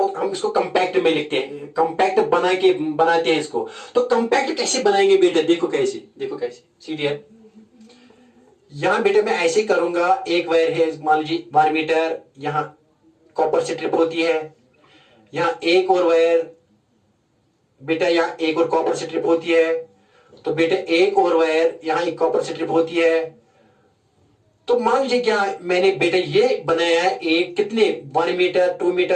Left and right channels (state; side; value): identical; both; correlation 1.00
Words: हम इसको कंपैक्ट में लिखते हैं, कंपैक्ट बनाते हैं इसको। तो कंपैक्ट कैसे बनाएंगे बेटा, देखो कैसे, देखो कैसे सीरियर, यहां बेटे मैं ऐसे करूंगा, एक वायर है मान लीजिए 1 मीटर, यहां कॉपर स्ट्रिप होती है, यहां एक और वायर बेटा, यहां एक और कॉपर स्ट्रिप होती है, तो बेटे एक और वायर, यहां एक कॉपर स्ट्रिप होती है। तो मान लीजिए क्या मैंने बेटा ये बनाया है, एक कितने 1 मीटर, 2